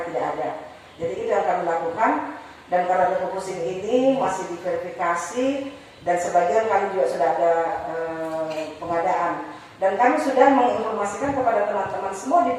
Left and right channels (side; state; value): both; identical; correlation 1.00